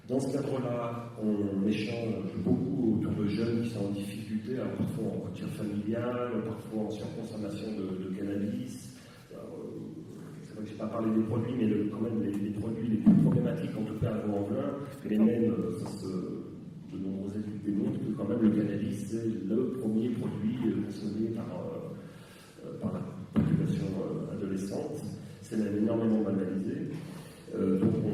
Dans ce cadre-là, on échange beaucoup autour de jeunes qui sont en difficulté, alors parfois en rupture familiale, parfois en surconsommation de cannabis. C'est vrai que je n'ai pas parlé des produits, mais quand même les produits les plus problématiques, en tout cas à Vaux-en-Velin, mais même de nombreuses études démontrent que quand même le cannabis, c'est le premier produit consommé par la population adolescente. C'est même énormément banalisé. Donc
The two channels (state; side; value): identical; both; correlation 1.00